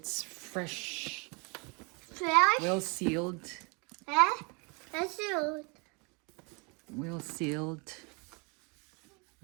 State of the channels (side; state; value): left; quieter; 31.9 dB